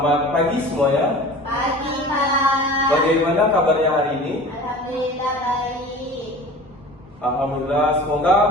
pagi semuanya. Pagi, Pak. Bagaimana kabarnya hari ini? Alhamdulillah baik. Alhamdulillah, semoga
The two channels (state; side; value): normal; both; correlation 0.39